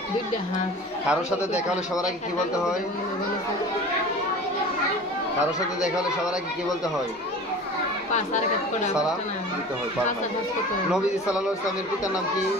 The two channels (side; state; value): both; normal; correlation 0.39